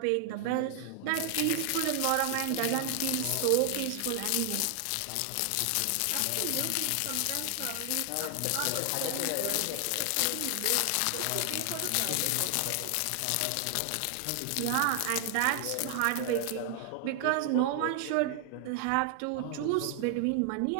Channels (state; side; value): different; both; correlation 0.00